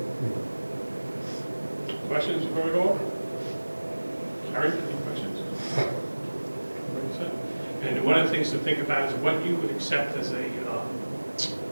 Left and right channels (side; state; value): both; inverted; correlation -1.00